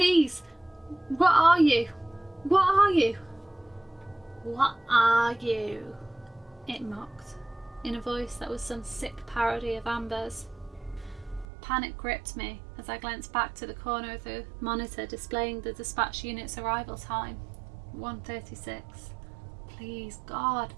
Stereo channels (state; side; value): drops out; left; at 11.5 s